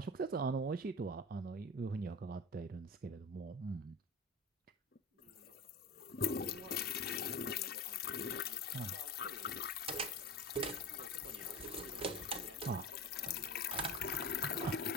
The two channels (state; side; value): normal; both; correlation 0.30